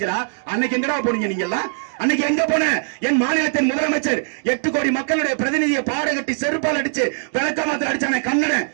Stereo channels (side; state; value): left; silent; 65 dB below the other